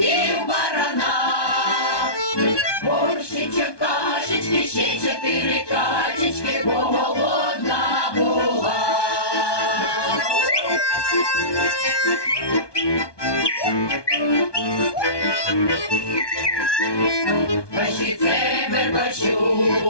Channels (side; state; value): right; late; 1.2 ms